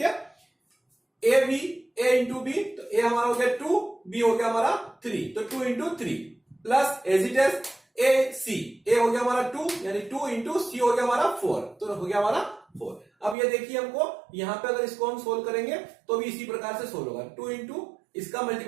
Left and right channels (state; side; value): drops out; left; at 13.4 s